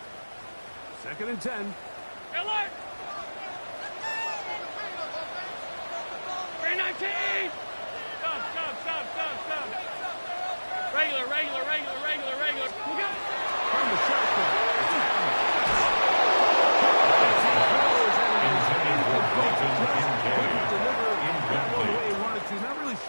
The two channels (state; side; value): inverted; both; correlation -1.00